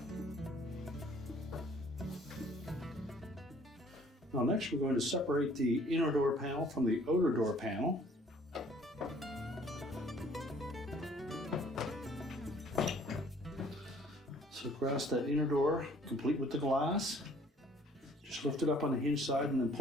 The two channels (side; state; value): both; normal; correlation 0.57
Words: Now next we're going to separate the inner door panel from the odor door panel. So grasp that inner door, complete with the glass. Just lift it up on the hinge side and then